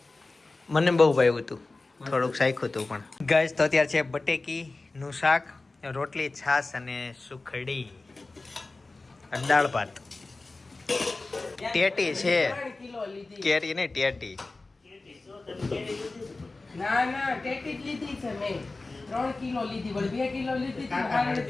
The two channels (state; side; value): quieter; right; 3.4 dB